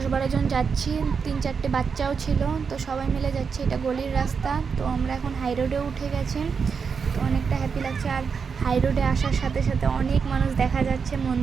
জন যাচ্ছি, 3-4টে বাচ্চাও ছিল, তো সবাই মিলে যাচ্ছি। এটা গলির রাস্তা। তো আমরা এখন হাই রোডে উঠে গেছি, তো অনেকটা হ্যাপি লাগছে। আর হাই রোডে আসার সাথে সাথে অনেক মানুষ দেখা যাচ্ছে,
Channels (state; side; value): quieter; left; 5.8 dB